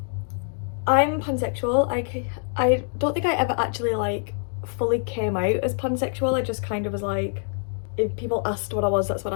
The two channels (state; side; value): silent; right; 62 dB below the other